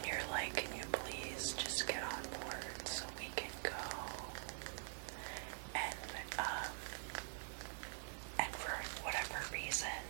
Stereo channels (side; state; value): left; silent; digital silence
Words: you're like, can you please just get on board so we can go? And for whatever reason,